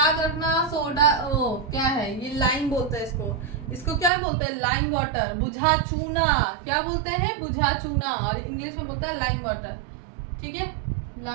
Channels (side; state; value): left; drops out; at 4.1 s